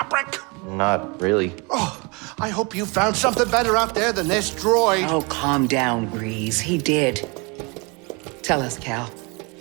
Not really. Oh, I hope you found something better out there than this droid. Oh, calm down, Grease. He did. Tell us, Cal.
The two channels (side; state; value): left; quieter; 29.6 dB